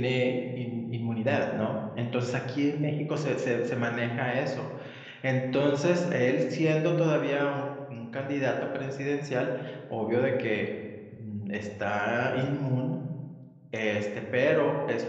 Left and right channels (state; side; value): identical; both; correlation 1.00